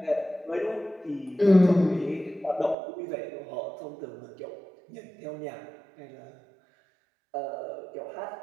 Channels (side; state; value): left; drops out; at 2.8 s